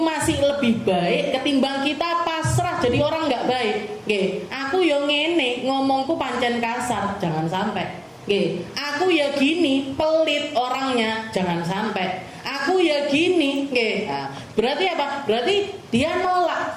lebih baik ketimbang kita pasrah jadi orang nggak baik. Aku yo ngene, ngomongku pancen kasar, jangan sampai. Aku ya gini, pelit orangnya, jangan sampai. Aku ya gini, nah, berarti apa? Berarti dia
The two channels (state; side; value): identical; both; correlation 1.00